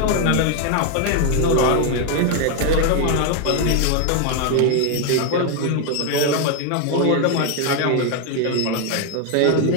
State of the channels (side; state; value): both; different; correlation 0.01